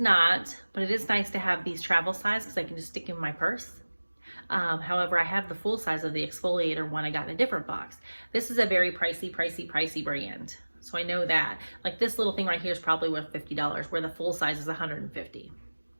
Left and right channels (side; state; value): both; inverted; correlation -1.00